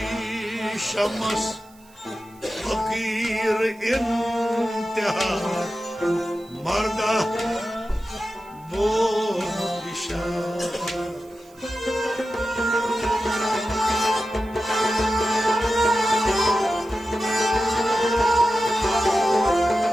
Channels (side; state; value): right; noise; hiss, 28 dB below the sound